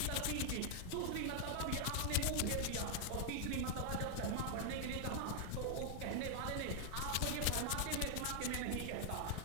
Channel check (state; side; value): different; both; correlation 0.00